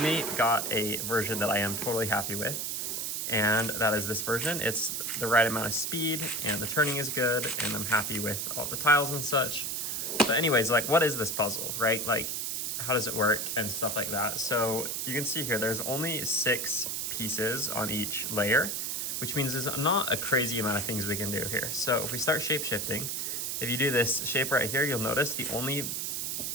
got a version that I am totally happy with. And that is this version. It's the right amount of speed and the turning is good, and I'm happy with all the tiles and such. But anyways, like, what is this puzzle, right? Like, how does it work and stuff like that? So you can see here, there's only 6 pieces on each layer, which means there's not a crazy amount of things we can do here. So if we start shape shifting, if you do this shape right here, you'll notice the only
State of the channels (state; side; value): noise; right; hiss, 2 dB below the sound